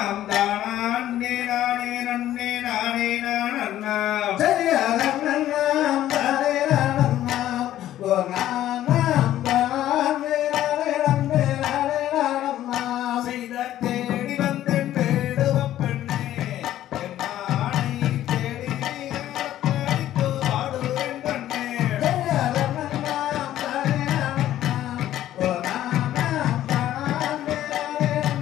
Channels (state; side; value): quieter; right; 12.9 dB